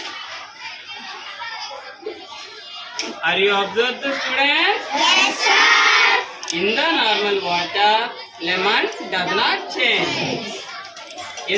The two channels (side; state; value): both; identical; correlation 1.00